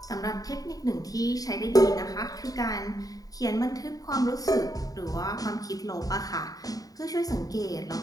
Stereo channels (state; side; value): late; right; 0.18 ms